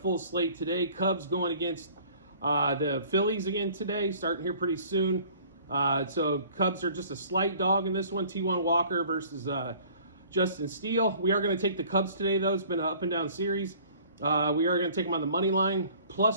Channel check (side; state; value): both; inverted; correlation -0.52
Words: slate today. Cubs going against the Phillies again today, starting here pretty soon. So Cubs are just a slight dog in this one. T1 Walker versus Justin Steele. We are going to take the Cubs today, though. It's been an up and down series. We are going to take them on the money line,